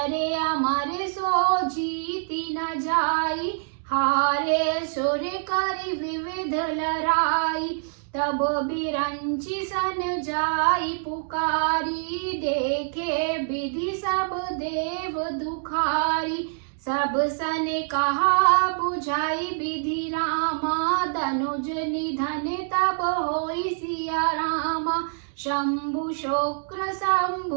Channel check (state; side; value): silent; left; digital silence